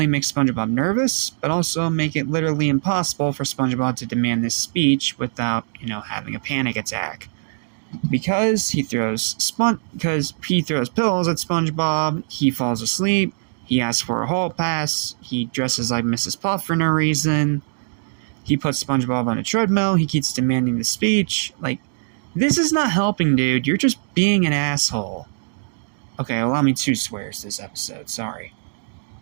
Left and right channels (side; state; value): left; silent; digital silence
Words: make SpongeBob nervous, but also make it literally impossible for SpongeBob to demand this speech without, having a panic attack. Because he throws pillows at SpongeBob, he falls asleep, he asks for a hall pass, he dresses like Mrs. Puff for no reason, he puts SpongeBob on a treadmill, he keeps demanding the speech. Like, this is not helping, dude. You're just being an asshole. Okay, allow me 2 swears this episode, sorry.